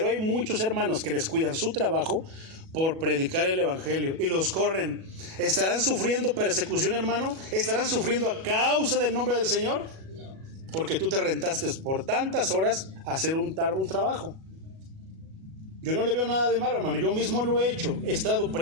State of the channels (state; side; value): late; left; 37 ms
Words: hay muchos hermanos que descuidan su trabajo por predicar el evangelio y los corren. ¿Estarán sufriendo persecución, hermano? ¿Estarán sufriendo a causa del nombre del Señor? Porque tú te rentaste por tantas horas a hacer un trabajo. Yo no le veo nada de malo, hermano. Yo mismo lo he hecho.